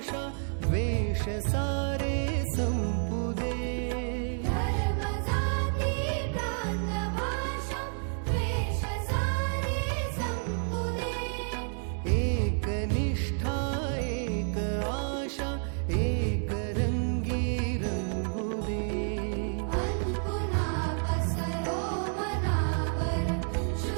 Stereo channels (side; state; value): left; silent; 58 dB below the other